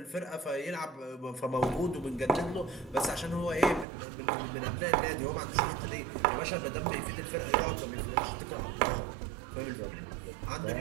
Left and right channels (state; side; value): drops out; left; at 3.9 s